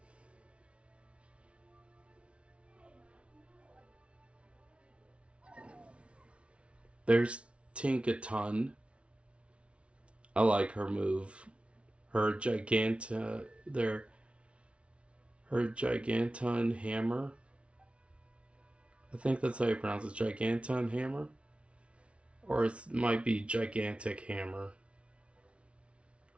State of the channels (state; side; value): late; left; 0.060 ms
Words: There's Tinkaton. I like her move. Her Giganton Hammer. I think that's how you pronounce it. Giganton Hammer? Or it might be Gigantic Hammer.